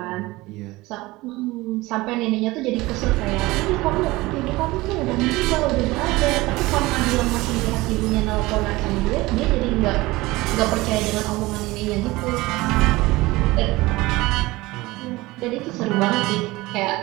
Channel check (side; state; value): left; quieter; 20.4 dB